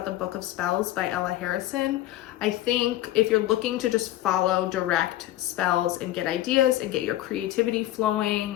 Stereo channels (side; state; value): right; quieter; 14.8 dB